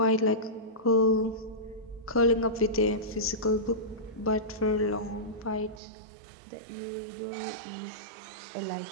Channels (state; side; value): drops out; left; at 5.8 s